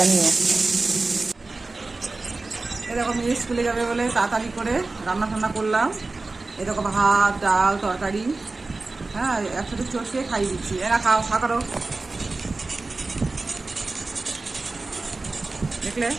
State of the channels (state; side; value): quieter; left; 3.5 dB